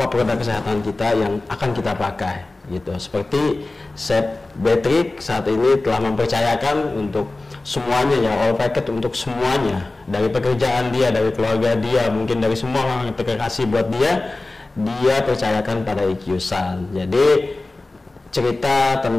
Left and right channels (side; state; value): right; quieter; 3.1 dB